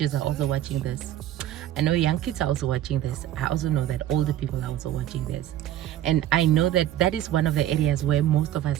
are also watching this, I know young kids are also watching this, I also know that older people are also watching this, and I know that that is one of the areas where most of us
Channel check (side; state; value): left; quieter; 12.3 dB